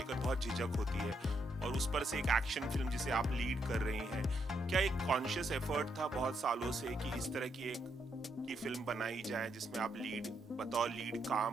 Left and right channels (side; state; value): both; normal; correlation 0.78